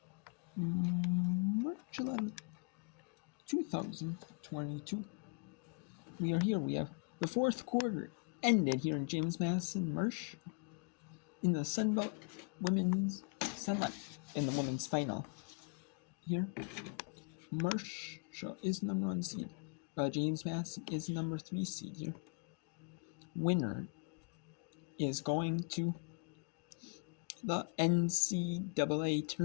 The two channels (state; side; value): quieter; right; 37.2 dB